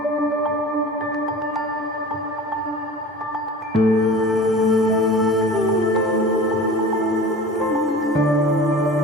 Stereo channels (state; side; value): normal; both; correlation 0.38